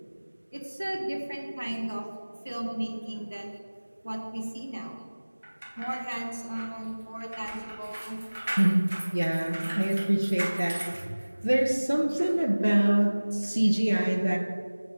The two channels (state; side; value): inverted; both; correlation -1.00